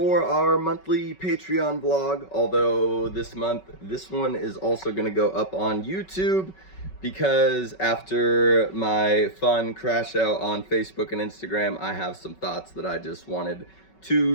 our monthly Patreon vlog. Although this month, this one is also going to go up on YouTube because after my fun crash out on Facebook and Instagram, I have some thoughts that I just wanted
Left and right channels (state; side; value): late; right; 5.3 ms